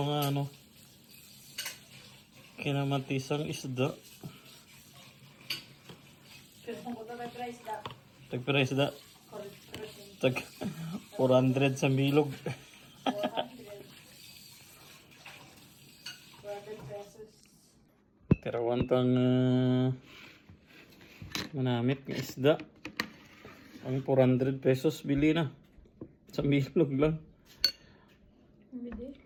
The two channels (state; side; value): identical; both; correlation 1.00